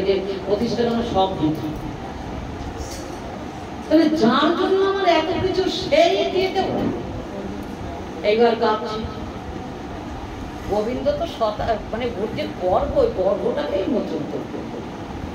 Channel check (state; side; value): identical; both; correlation 1.00